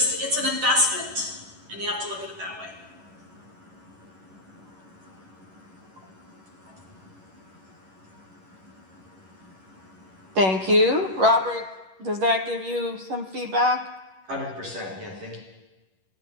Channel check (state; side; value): late; left; 11 ms